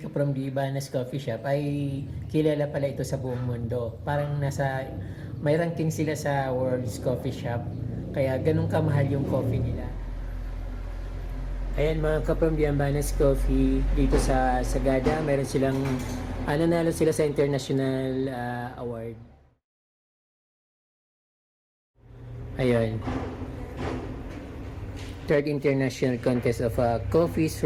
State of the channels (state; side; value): identical; both; correlation 1.00